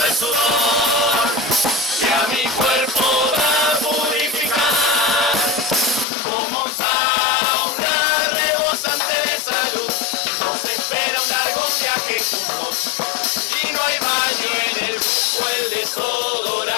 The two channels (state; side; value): drops out; right; at 6.1 s